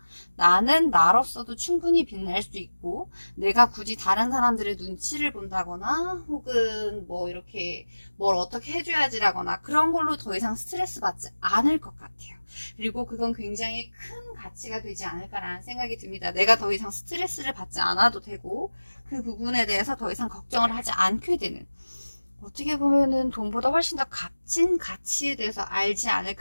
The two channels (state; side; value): inverted; both; correlation -1.00